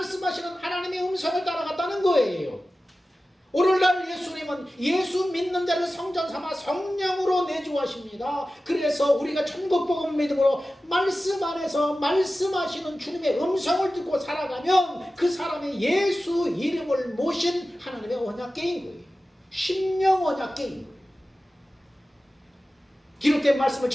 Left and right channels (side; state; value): both; normal; correlation 0.95